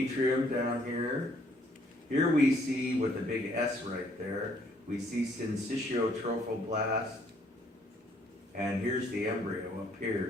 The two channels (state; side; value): normal; both; correlation 0.65